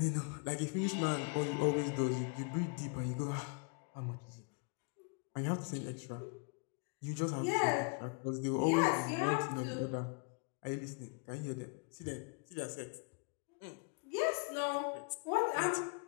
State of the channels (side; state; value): right; quieter; 36.0 dB